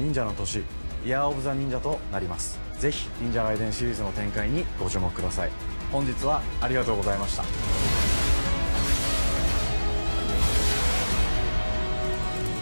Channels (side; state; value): both; inverted; correlation -1.00